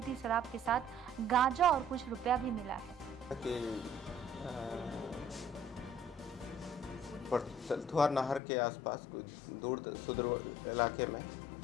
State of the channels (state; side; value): drops out; right; at 8.4 s